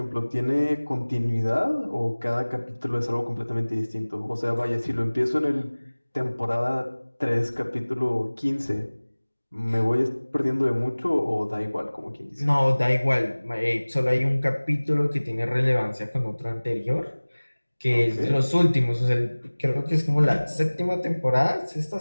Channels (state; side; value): inverted; both; correlation -1.00